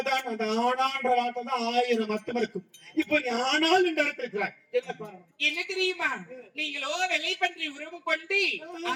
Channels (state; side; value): identical; both; correlation 1.00